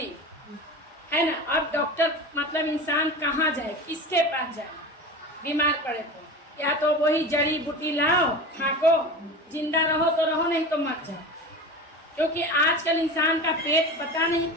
है ना। अब डॉक्टर मतलब इंसान कहाँ जाए, किसके पास जाए बीमार पड़े तो, या तो वही जड़ी बूटी लाओ खाको, जिंदा रहो तो रहो, नहीं तो मर जाओ। क्योंकि आजकल इंसान का पेट पता नहीं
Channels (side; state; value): both; normal; correlation 0.30